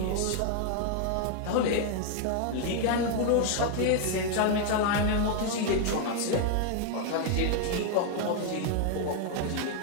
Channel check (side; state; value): both; different; correlation 0.00